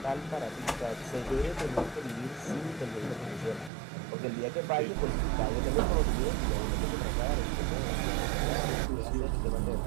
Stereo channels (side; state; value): left; drops out; at 3.7 s